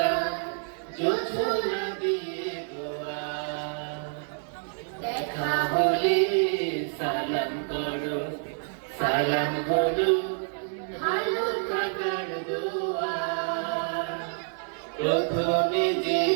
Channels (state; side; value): silent; left; digital silence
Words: জোছনা দিয়ে দোয়া। দেখা হলে সালাম করো, সালাম হলো ভালো থাকার দোয়া। প্রথমে যে